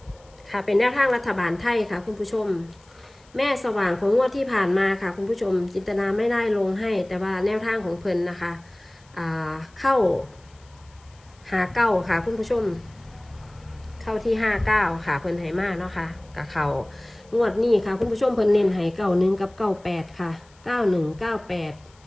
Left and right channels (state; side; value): noise; left; hiss, 30 dB below the sound